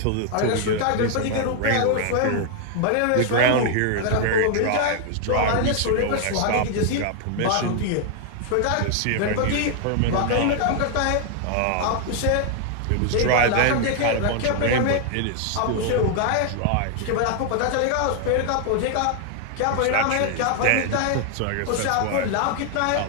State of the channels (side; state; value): both; different; correlation 0.00